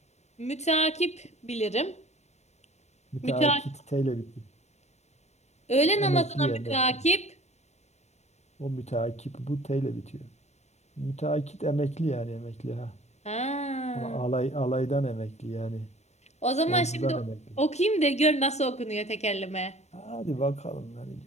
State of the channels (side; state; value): right; late; 0.32 ms